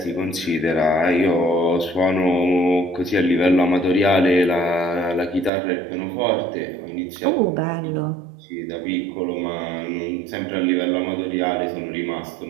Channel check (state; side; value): drops out; left; at 5.5 s